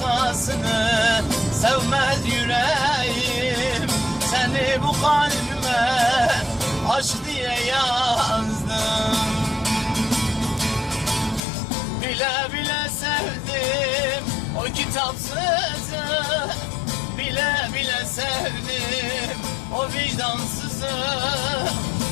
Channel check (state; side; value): drops out; right; at 11.4 s